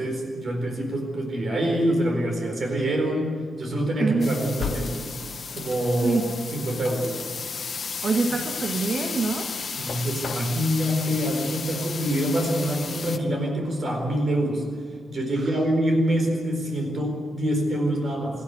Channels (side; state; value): both; normal; correlation 0.83